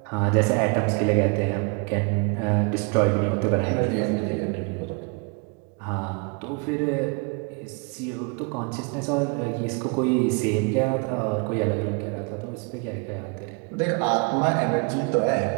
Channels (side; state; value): left; quieter; 33.2 dB